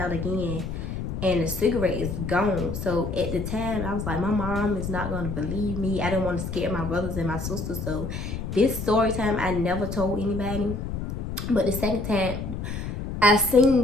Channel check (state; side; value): noise; left; rumble, 5 dB below the sound